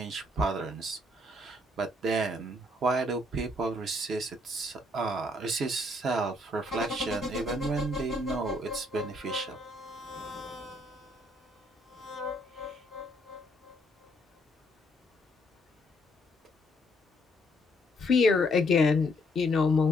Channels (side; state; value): both; normal; correlation 0.70